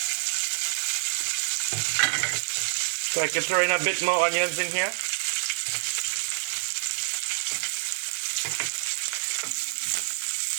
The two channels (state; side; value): silent; left; digital silence